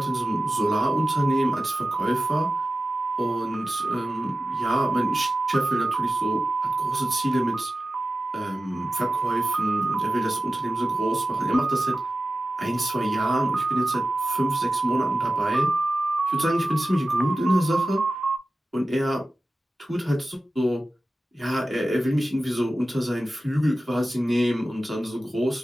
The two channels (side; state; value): both; normal; correlation 0.94